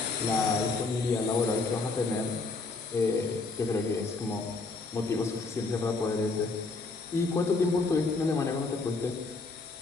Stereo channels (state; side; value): quieter; right; 3.8 dB